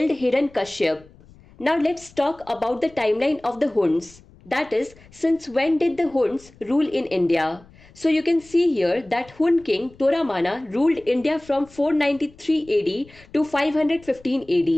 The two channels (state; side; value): noise; left; rumble, 25 dB below the sound